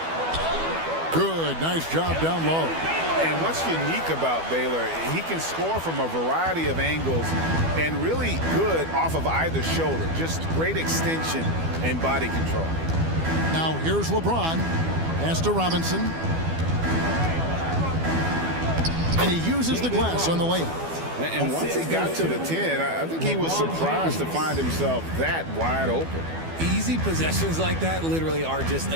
Good. Nice job down low. And what's unique about Baylor, he can score from a variety of angles and really good off of either shoulder. Just great extension and body control. Now here's LeBron. Pass to Robinson. And he uses the glass on the layup. And once he got to the 10, I think he was surprised to find himself that wide open. Easy possessions like that literally are just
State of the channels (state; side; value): late; left; 12 ms